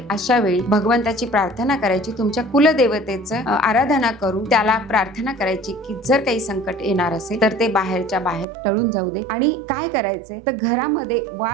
अशा वेळी भगवंताची प्रार्थना करायची, तुमच्या कुलदेवतेचं आराधना करून त्याला प्रार्थना करायची की जर काही संकट येणार असेल तर ते बाहेरच्या बाहेर टळून जाऊ दे. आणि काय करायचंय तर घरामध्ये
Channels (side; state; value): left; drops out; at 8.5 s